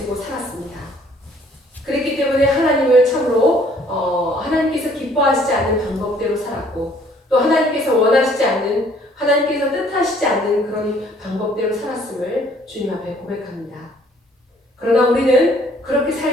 살았습니다. 그랬기 때문에 하나님을 참으로 하나님께서 기뻐하시지 않는 방법대로 살았고 또 하나님께서 원하시지 않는 하나님께서 뜻하시지 않는 그런 방법대로 살았음을 주님 앞에 고백합니다. 그러나 우리는 그렇게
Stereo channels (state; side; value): normal; both; correlation 0.60